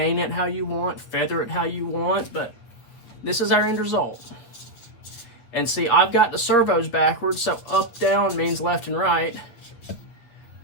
it how you want, feather it how you want, but this is our end result. And see, I've got the servos backwards, so up, down means left and right.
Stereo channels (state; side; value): late; right; 9.1 ms